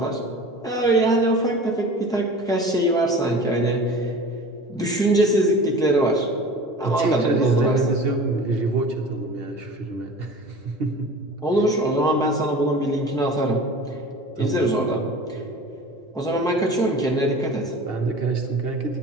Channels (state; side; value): normal; both; correlation 0.39